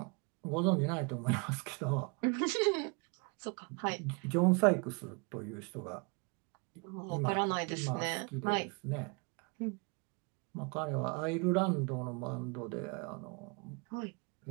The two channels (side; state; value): left; quieter; 31.9 dB